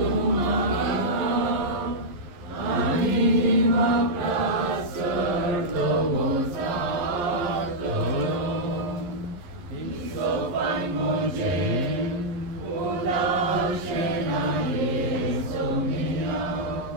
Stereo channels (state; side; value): late; left; 11 ms